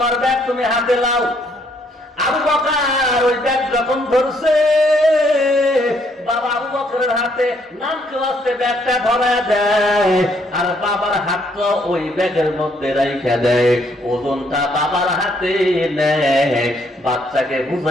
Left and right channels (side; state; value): both; normal; correlation 0.69